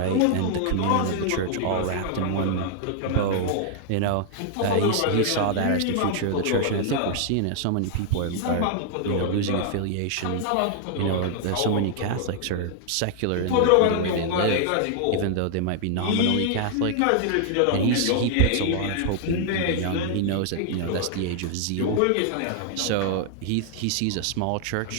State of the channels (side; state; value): both; different; correlation 0.00